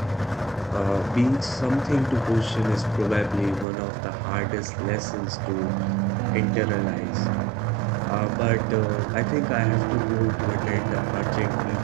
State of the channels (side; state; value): left; drops out; at 3.7 s